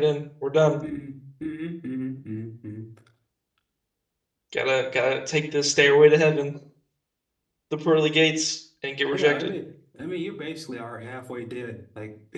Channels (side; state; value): both; identical; correlation 1.00